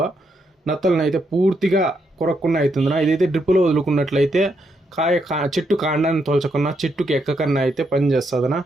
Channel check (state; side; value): normal; both; correlation 0.79